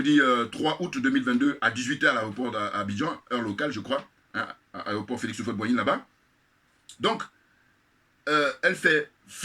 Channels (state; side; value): identical; both; correlation 1.00